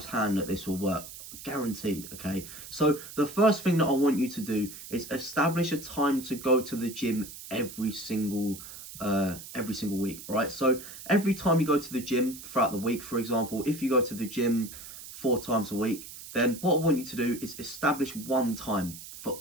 that this will work, guaranteed. Okay, so the first thing that I want you to do is establish a time to go to the gym every single week, right? So every time you go to the gym throughout the week, for example, if you go to the gym 4 times a week, then what I want you to do is establish one time for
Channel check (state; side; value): noise; right; hiss, 13 dB below the sound